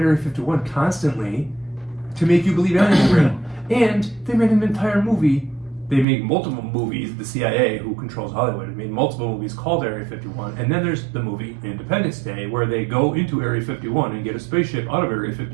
Area 51 constantly to make you believe aliens are real. And they made an entire movie. They make multiple movies. The CIA, who controls Hollywood, made multiple movies called Area 51. And then there's the movie Independence Day, where they go into Area 51 and get a spaceship out of Area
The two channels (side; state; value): left; drops out; at 6.1 s